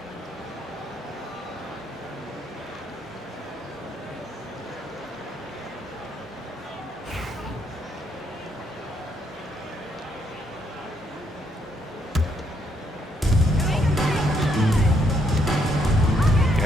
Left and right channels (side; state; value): both; normal; correlation 0.74